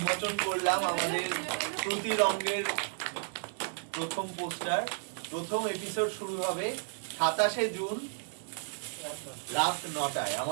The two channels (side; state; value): left; silent; 56 dB below the other